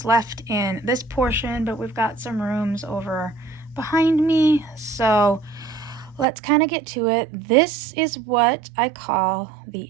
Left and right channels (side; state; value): left; drops out; at 6.2 s